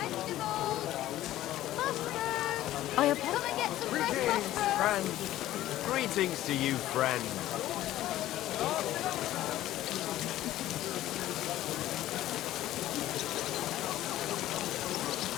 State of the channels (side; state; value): right; quieter; 14.3 dB